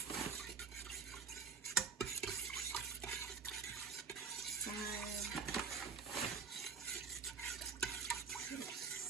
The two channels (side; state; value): left; quieter; 5.6 dB